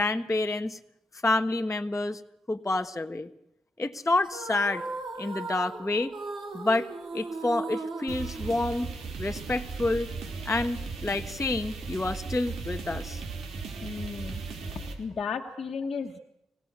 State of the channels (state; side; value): normal; both; correlation 0.82